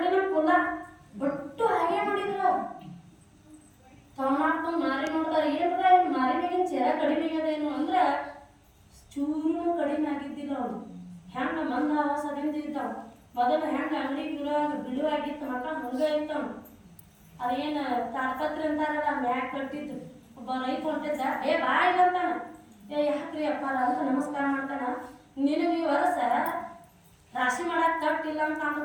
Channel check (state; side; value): identical; both; correlation 1.00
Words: ಕುಲ್ಲ ಬಿಟ್ಟು ಹಾಗೆ ನೋಡಿದ್ರು. ತವಣಪ್ಪ ಮಾರಿ ನೋಡ್ತಾರೆ. ಏನ್ರ ಮಾರಿ ಮೇಗಿನ ಚೆರ ಕಡಿಮೆ ಆಗದೇನು ಅಂದ್ರೆ ಚೂರು ಕಡಿಮೆ ಆಗಿದ್ದಿಲ್ಲ. ಅವ್ನು ಹೆಂಗ ಮಂದ ಆವಾಸದಿಂದ ಇದ್ದಾವ. ಮೊದಲು ಹೆಂಗೆ ಅಂಗಡಿ ಬಿಡುವಾಗಿತ್ತು ಮಕ್ಕಳು ಹಂಗೆ ಇರ್ತಾವ. ಅದೇನು ತಾಡ್ಪತ್ರಿ ಅಂತಾರಲ್ಲ ಮ್ಯಾಗ ಕಟ್ಟಿದ್ದು. ಒಬ್ಬ ರೈತ ಹೊಂಟಿದ್ದ, ಬಾ ಇಲ್ಲ ಅಂತಾನ. ಯಾಕ್ರಿ ಅಪ್ಪಾರ ಅಂತ ನಮಸ್ಕಾರ ಮಾಡ್ತಾನ. ನಿನಗೆ ಈ ವರ್ಷ ರಾಶಿ ಮಾಡಕ್ ತಟ್ಟಿಲ್ಲ ಅಂತ